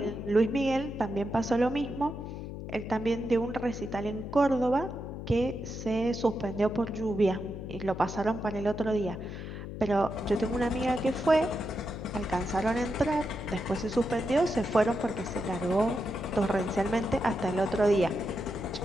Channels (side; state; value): left; noise; hum, 8 dB below the sound